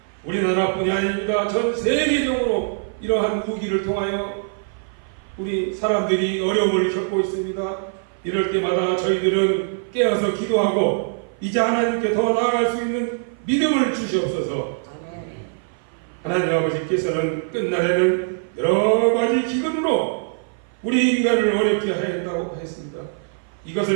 우리나라뿐이 아닙니다. 전 세계적으로 이러한 위기를 통하여 우리 사람들이 어려움을 겪고 있습니다. 이럴 때마다 저희들은 깨어서 기도하고 이제 하나님께 더 나아갈 수 있는 믿음을 주시옵소서. 아멘. 하나님 아버지께서는 끝날에는 여러 가지 기근으로 우리 인간을 어렵게 하였다고 했습니다.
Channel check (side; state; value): left; silent; 56 dB below the other